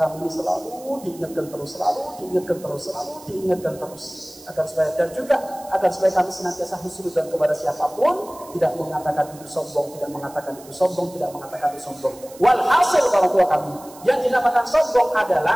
ini selalu diingatkan terus, agar supaya kami senantiasa husnudzon kepada siapapun, tidak mengatakan itu sombong, tidak mengatakan itu sombong. Walhasil orang tua kami, yang dinamakan sombong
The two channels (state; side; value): noise; right; hiss, 21 dB below the sound